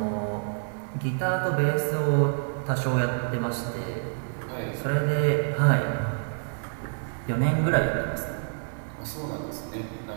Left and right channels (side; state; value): left; silent; 60 dB below the other